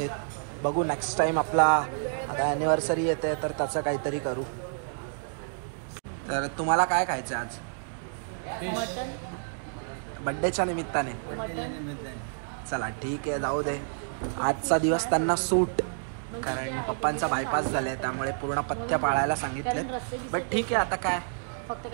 बघू नेक्स्ट टाईम आपला आता ॲनिव्हर्सरी येते तर त्याचं काहीतरी करू. तर तुम्हाला काय खायचं आज बड्डेच्या निमित्ताने? चला ठीक आहे, जाऊ दे. आजचा दिवस त्यांना सूट, कारण पप्पांचा बायपास झाला आहे, त्यामुळे पूर्ण पथ्य पाळायला सांगितलेत. बट ठीक आहे, आता काय फक्त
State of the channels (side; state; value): left; silent; digital silence